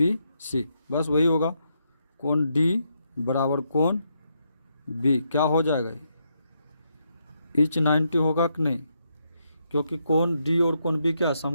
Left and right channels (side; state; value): both; inverted; correlation -0.79